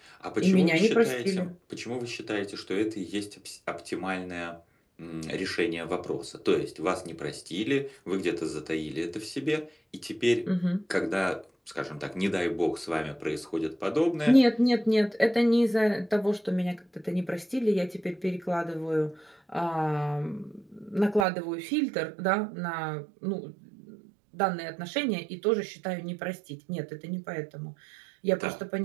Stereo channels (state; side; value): drops out; left; at 21.2 s